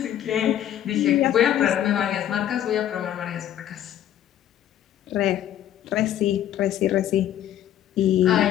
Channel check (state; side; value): quieter; right; 11.3 dB